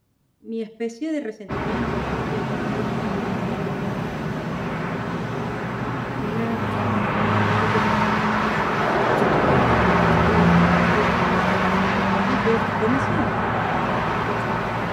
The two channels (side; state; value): both; identical; correlation 1.00